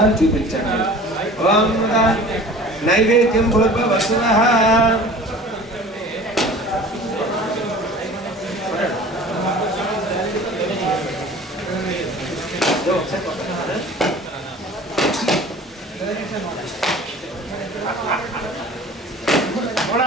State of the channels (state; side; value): normal; both; correlation 0.43